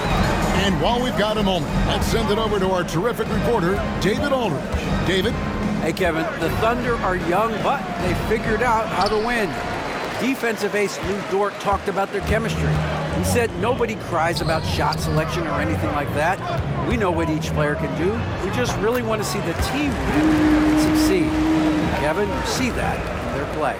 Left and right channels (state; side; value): identical; both; correlation 1.00